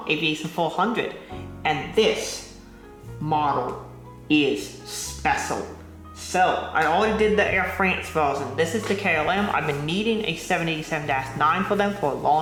Aviation 400, and this model is special. So I already did the Air France version. This is the KLM. I've been needing a 787-9 for them for a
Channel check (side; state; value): both; identical; correlation 1.00